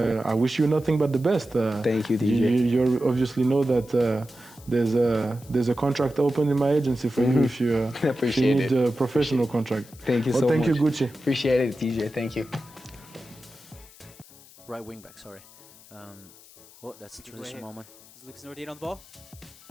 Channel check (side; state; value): left; noise; hiss, 23 dB below the sound